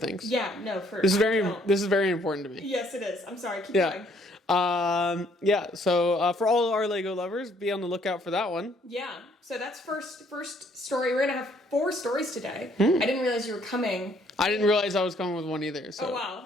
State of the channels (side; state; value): both; normal; correlation 0.65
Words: Yeah, no, This is very important to me. Yes, it is. I'm sorry. Keep going. So for all our Lego lovers, be on the lookout for that one. Yeah. So that's first story. We're gonna have 4 stories today. I didn't realize you were coming. I didn't realize I was coming with one either. So. Oh